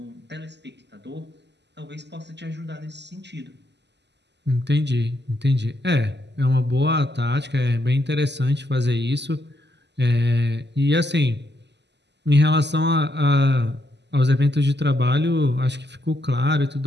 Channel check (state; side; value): late; left; 0.50 ms